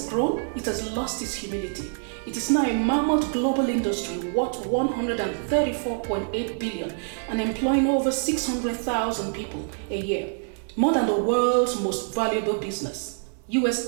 grown, it has lost its humility. It is now a mammoth global industry worth $134.8 billion and employing over 600,000 people a year, more than the world's most valuable business, US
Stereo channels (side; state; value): left; silent; digital silence